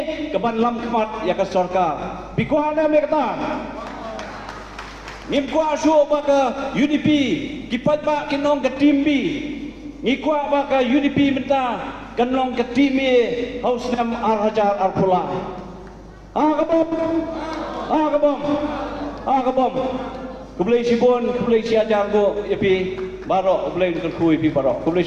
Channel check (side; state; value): both; identical; correlation 1.00